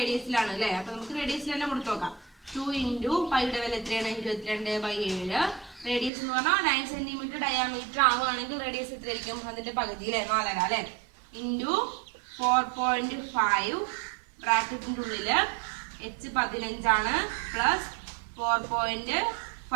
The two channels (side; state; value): left; drops out; at 6.1 s